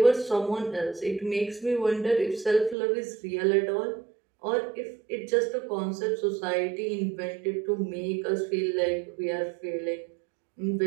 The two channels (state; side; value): drops out; left; at 2.8 s